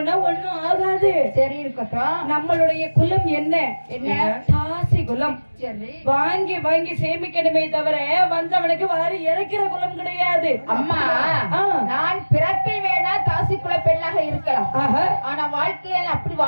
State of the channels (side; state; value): both; inverted; correlation -1.00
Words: ஒண்ணும் ஆகாது. சரி, இருக்கட்டும். நம்மளுடைய குலம் என்ன? தாசி குலம். சரி, வாங்கி வாங்கி சேமிக்கணுமே தவிர வந்தவனுக்கு வாரி இறக்கிற குலம் கிடையாது. அம்மா, நான் பிறப்பில் வேணா தாசி குல பெண்ணாக இருக்கலாம். ஆனா வாழ்க்கையில அப்படி